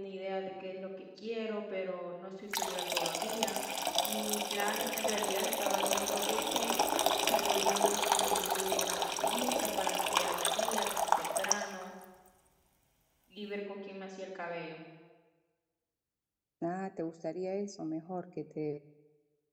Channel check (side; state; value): both; identical; correlation 1.00